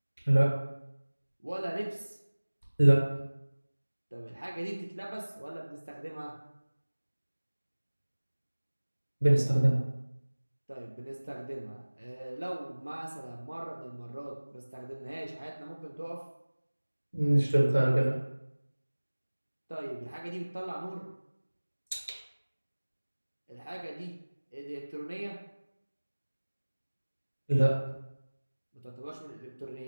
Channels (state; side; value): inverted; both; correlation -1.00